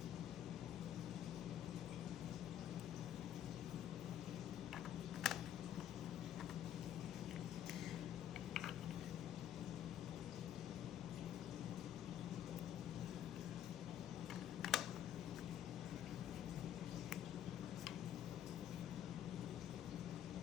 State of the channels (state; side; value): quieter; right; 10.5 dB